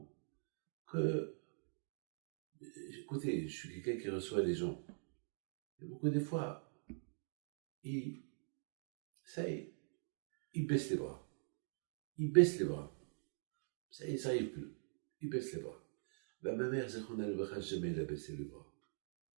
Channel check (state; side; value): silent; left; digital silence